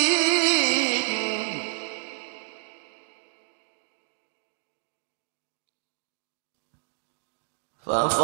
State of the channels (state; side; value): silent; left; digital silence